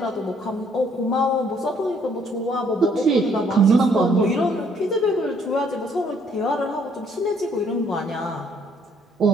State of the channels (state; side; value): normal; both; correlation 0.65